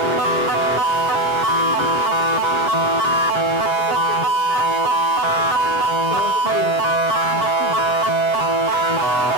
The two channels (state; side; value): late; left; 7.3 ms